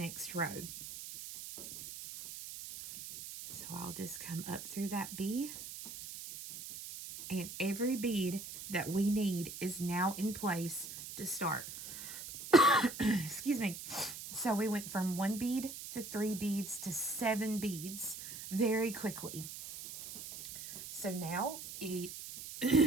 row. So I'll just come up through that B, and every bead that we need is now in place to start. Excuse me. So we went from 1 bead to 3 beads to 7 beads very quickly. So now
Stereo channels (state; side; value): noise; right; hiss, 10 dB below the sound